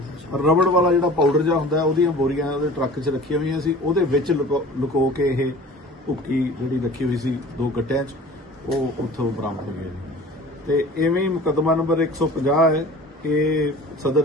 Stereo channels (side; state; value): both; normal; correlation 0.43